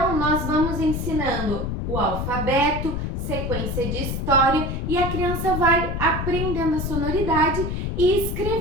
nós vamos ensinando o alfabeto, sequência de história e a criança vai aprendendo a sonoridade e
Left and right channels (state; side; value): noise; left; rumble, 3 dB below the sound